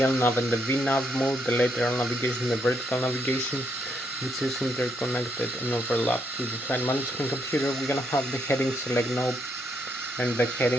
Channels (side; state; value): both; normal; correlation 0.76